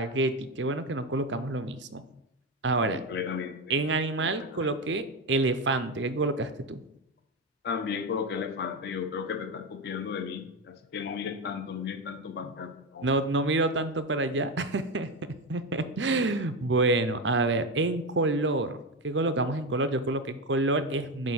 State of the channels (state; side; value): normal; both; correlation 0.14